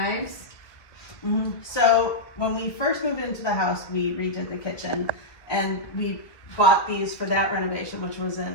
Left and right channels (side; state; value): right; late; 1.6 ms